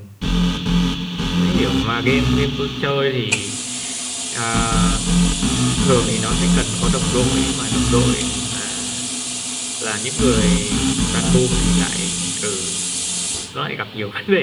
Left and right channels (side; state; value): both; identical; correlation 1.00